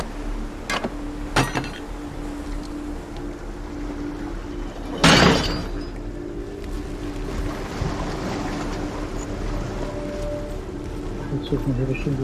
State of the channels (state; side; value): identical; both; correlation 1.00